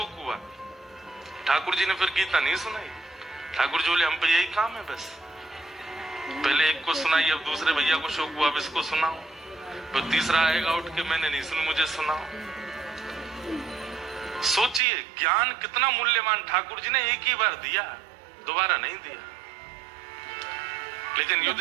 हुआ। ठाकुर जी ने फिर गीता नहीं सुनाई। ठाकुर जी बोले, हम पे यही काम है बस, पहले एक को सुनाई, अब दूसरे भैया को शोक हुआ, अब इसको सुनाओ, फिर तीसरा आएगा उठ के, मैंने नहीं सुनी, मुझे सुनाओ। सोचिए ज्ञान कितना मूल्यवान। ठाकुर जी ने एक ही बार दिया, दोबारा नहीं दिया। लेकिन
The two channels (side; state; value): left; drops out; at 14.8 s